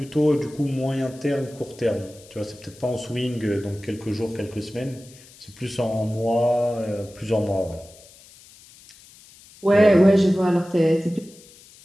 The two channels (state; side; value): noise; left; hiss, 23 dB below the sound